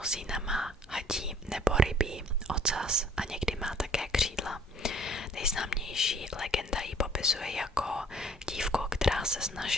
má hadí nebo rybí ocas a někdy má také křídla. Nejznámější legenda ji popisuje jako dívku, která se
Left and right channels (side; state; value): both; normal; correlation 0.57